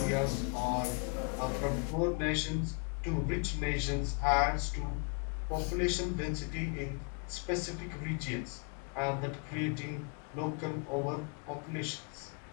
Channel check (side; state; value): right; quieter; 35.6 dB